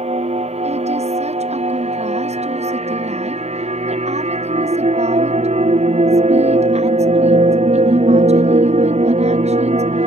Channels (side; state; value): left; late; 0.32 ms